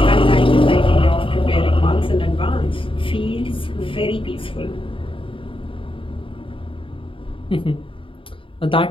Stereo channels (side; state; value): right; late; 0.25 ms